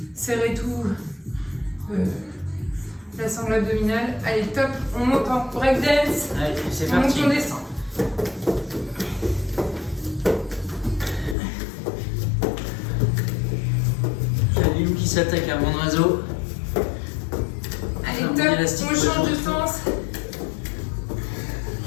serrer tout la sangle abdominale. Allez, top, on monte en breakdance. Allez, c'est On monte, parti. on descend. Il y a Lou qui s'attaque à mon oiseau. Allez, Mon top, élastique on peut change de chauffer. sens.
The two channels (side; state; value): right; drops out; at 11.4 s